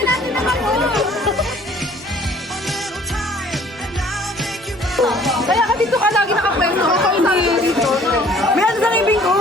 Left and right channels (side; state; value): both; normal; correlation 0.55